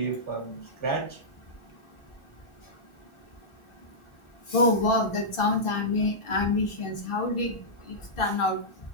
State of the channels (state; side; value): late; right; 1.4 ms